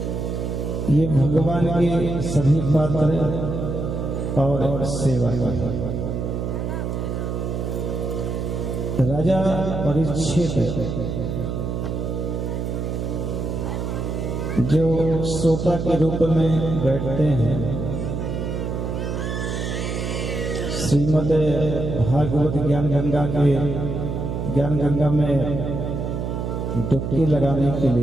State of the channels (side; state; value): right; noise; hum, 3 dB below the sound